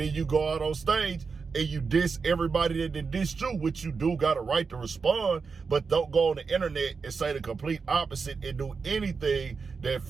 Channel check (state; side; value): quieter; left; 5.1 dB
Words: you go out on stage and you diss everybody that did diss you, which you do got a right to respond, but don't go on the internet and say the complete opposite and do anything that